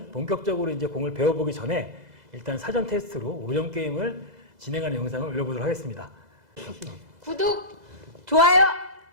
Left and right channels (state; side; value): late; left; 2.0 ms